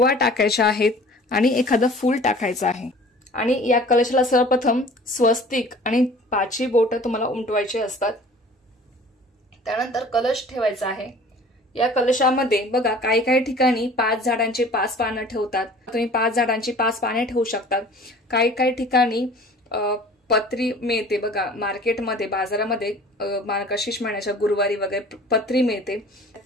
टाकायच्या आहेत आणि एखादं फूल टाकायचं आहे. आणि या कलशाला सर्वप्रथम स्वस्तिक आणि 5 बोटं तुम्हाला उमटवायचे असतात. त्यानंतर कलश ठेवायचा आहे. या कलशामध्ये बघा काही ठिकाणी 5 झाडांची 5 पानं ठेवतात. तुम्ही 5 झाडांची 5 पाने ठेवू शकतात. काही ठिकाणी पत्री मिळते बघा मार्केटमध्ये, बाजारामध्ये मार्गशीर्ष महिन्याच्या गुरुवारी वगैरे पत्री मिळते.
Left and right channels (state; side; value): normal; both; correlation 0.46